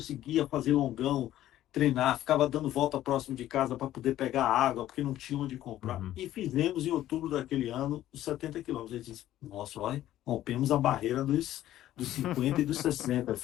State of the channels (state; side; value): quieter; right; 13.3 dB